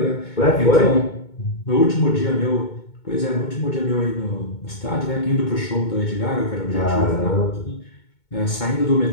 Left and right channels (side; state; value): right; late; 2.2 ms